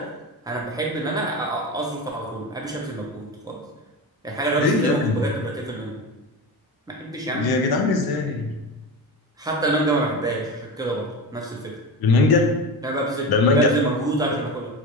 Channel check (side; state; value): both; normal; correlation 0.24